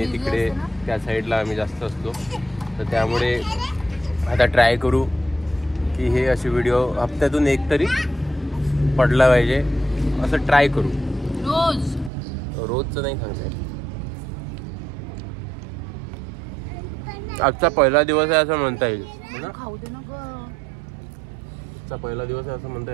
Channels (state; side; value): drops out; left; at 12.1 s